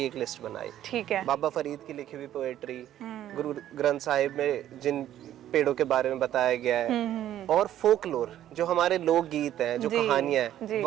एक लिस्ट बनाई। ठीक है। बाबा फरीद की लिखी हुई पोएट्री, गुरु ग्रंथ साहिब में जिन पेड़ों के बारे में बताया गया है, और फोकलोर जो हमारे लोकगीत हैं, जो कहानियां हैं,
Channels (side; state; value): left; quieter; 12.0 dB